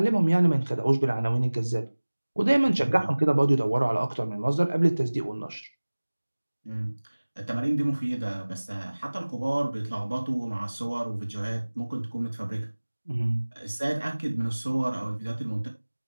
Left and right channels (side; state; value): both; inverted; correlation -1.00